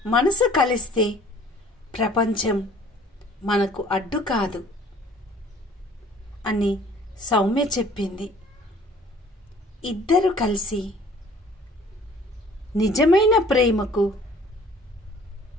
మనసు కలిస్తే ప్రపంచం మనకు అడ్డు కాదు అని సౌమ్య చెప్పింది. ఇద్దరు కలిసి నిజమైన ప్రేమకు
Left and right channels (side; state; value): both; normal; correlation 0.53